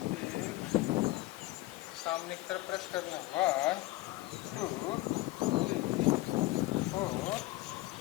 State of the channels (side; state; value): right; quieter; 18.9 dB